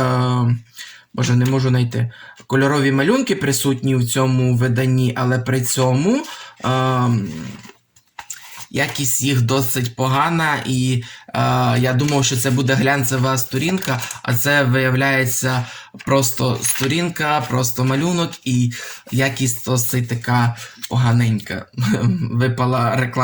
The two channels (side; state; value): both; identical; correlation 1.00